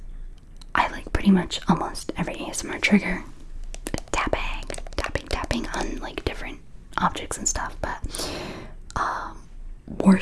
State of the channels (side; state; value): both; identical; correlation 1.00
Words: I like pretty much almost every ASMR trigger. Tapping on like different objects and stuff, but